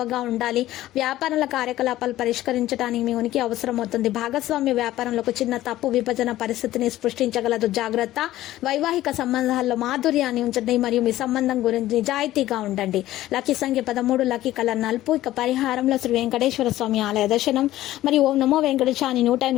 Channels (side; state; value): right; quieter; 14.8 dB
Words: ఉండాలి. వ్యాపారాల కార్యకలాపాలు పరిష్కరించడానికి మీ ఉనికి అవసరం అవుతుంది. భాగస్వామ్య వ్యాపారంలో ఒక చిన్న తప్పు విభజన పరిస్థితిని సృష్టించగలదు. జాగ్రత్త. వైవాహిక సంబంధాల్లో మాధుర్యాన్ని ఉంచండి మరియు మీ సంబంధం గురించి నిజాయితీగా ఉండండి. లక్కీ సంఖ్య 13, లక్కీ కలర్ నలుపు. ఇక పరిహారంలో శ్రీ వెంకటేశ్వర స్వామి ఆలయ దర్శనం మరియు ఓం నమో వెంకటేశాన్ని